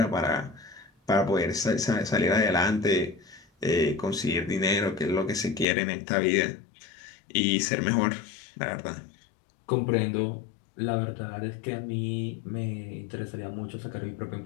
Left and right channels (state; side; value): drops out; right; at 5.7 s